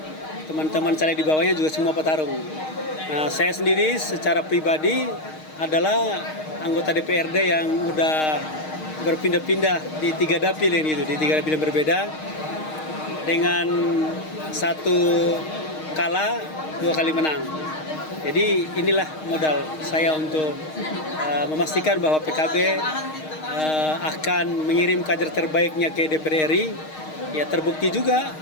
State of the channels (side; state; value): right; late; 6.4 ms